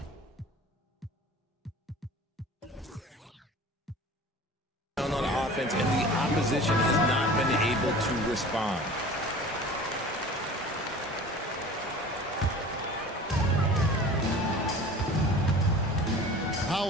tone on offense, and the opposition has not been able to respond.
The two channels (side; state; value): both; normal; correlation 0.41